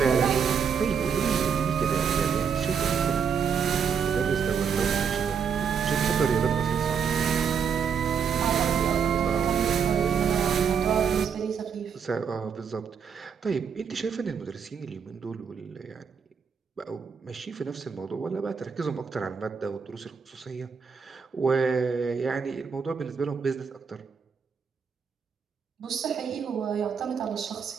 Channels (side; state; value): left; quieter; 6.7 dB